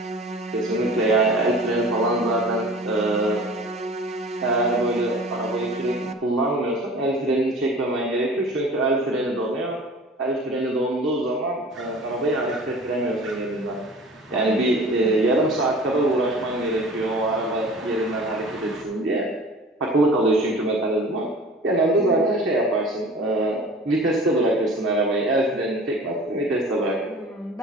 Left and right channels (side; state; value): both; normal; correlation 0.43